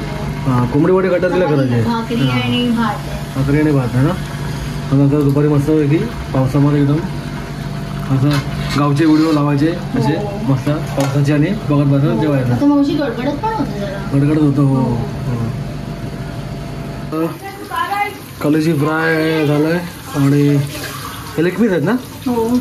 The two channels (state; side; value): identical; both; correlation 1.00